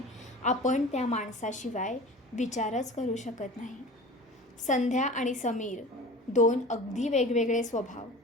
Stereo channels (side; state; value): both; normal; correlation 0.38